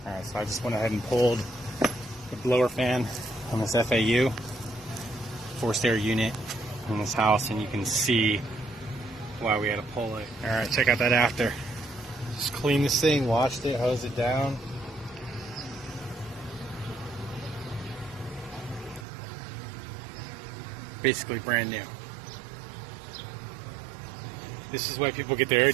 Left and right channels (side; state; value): left; drops out; at 19.1 s